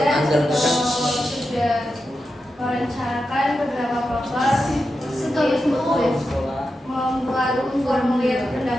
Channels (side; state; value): both; normal; correlation 0.89